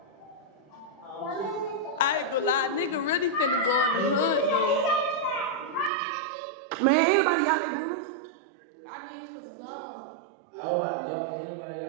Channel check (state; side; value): drops out; left; at 5.9 s